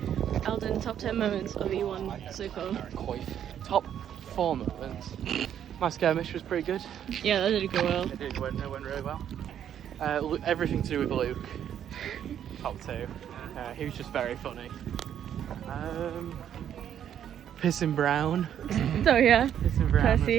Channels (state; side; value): quieter; left; 9.7 dB